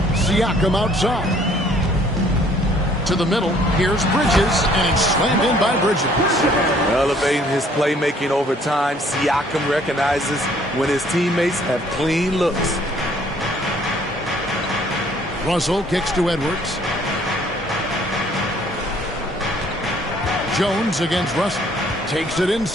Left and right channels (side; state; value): both; normal; correlation 0.60